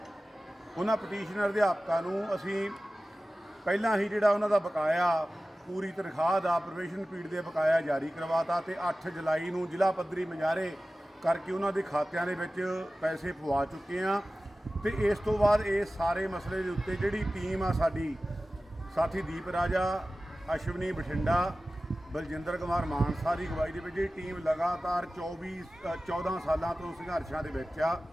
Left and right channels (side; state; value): both; normal; correlation 0.96